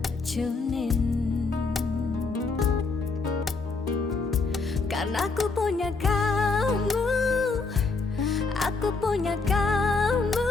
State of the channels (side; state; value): right; quieter; 4.1 dB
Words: Karena aku punya kamu, aku punya